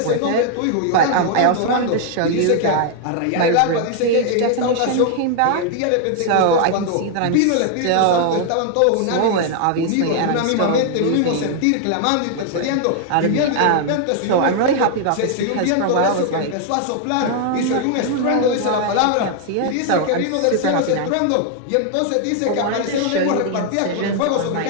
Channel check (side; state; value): both; different; correlation 0.00